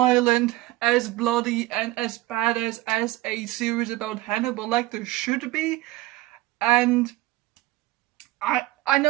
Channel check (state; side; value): quieter; left; 17.9 dB